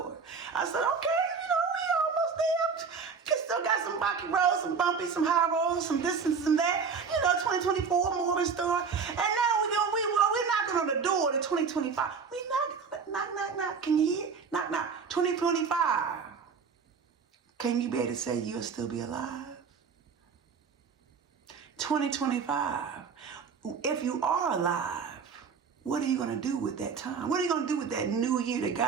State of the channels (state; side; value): quieter; left; 5.7 dB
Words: I said, okay, we almost there. Still got some rocky roads, some bumpy, some high roads, some this and some that. 2024 more in store. And now we're knocking on the door to 2025. We knock. Can you hear? Knock, knock. 2025. Can you be able to say you'll still be alive? 2025. If you are alive, what are you going to do with that time? What are you going to do with that new year that